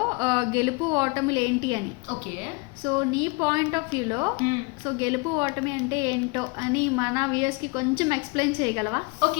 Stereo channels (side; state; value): right; quieter; 28.4 dB